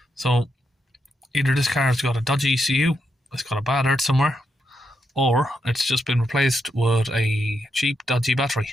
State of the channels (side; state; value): both; normal; correlation 0.82